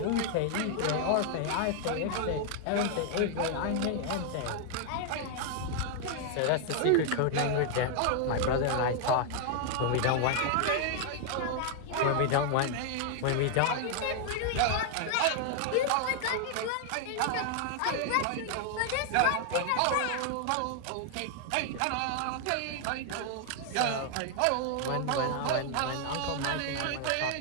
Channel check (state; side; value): different; both; correlation 0.00